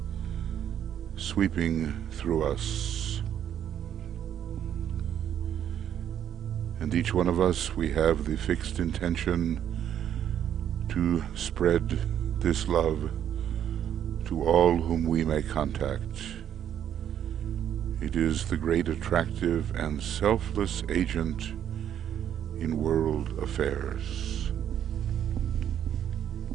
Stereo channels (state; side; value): quieter; left; 9.8 dB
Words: sweeping through us. And each one of us, we have the fixed intention to spread this love to all whom we may contact. It is the great attractive and selfless agent in world affairs.